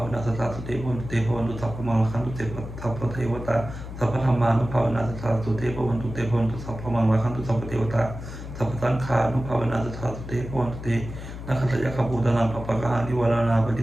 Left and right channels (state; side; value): noise; left; hum, 10 dB below the sound